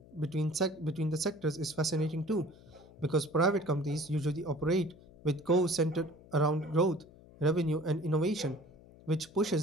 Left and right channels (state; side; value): noise; left; hum, 23 dB below the sound